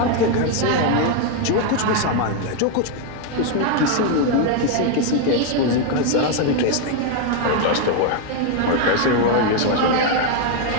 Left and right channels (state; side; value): different; both; correlation 0.01